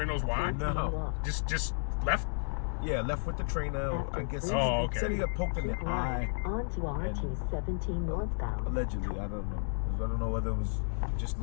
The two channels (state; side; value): silent; right; 56 dB below the other